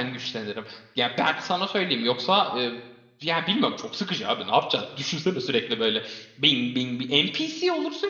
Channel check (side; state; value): both; identical; correlation 1.00